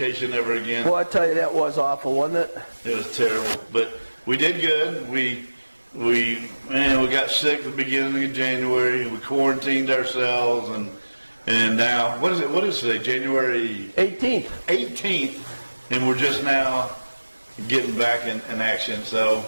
ever again. Well, I tell you, that was awful, wasn't it? It was terrible, but we did good. We got sick at the beginning of January. We quarantined ourselves, and now what is today? January 18th. 18th, and we're just now getting back in action. So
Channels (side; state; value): both; inverted; correlation -1.00